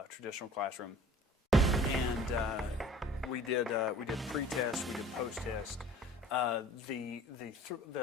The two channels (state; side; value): normal; both; correlation 0.47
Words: classroom. And we did pre-test, we did post-test. The